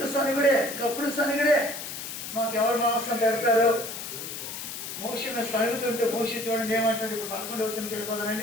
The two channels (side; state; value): left; noise; hiss, 8 dB below the sound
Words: సనిగుడే. మాకు ఎవరు మాంసం పెడతారు? మోషను సరుగుతుంటే మోషి చూడండి ఏమంటాడు. ఇప్పుడు 11వ వచనంకి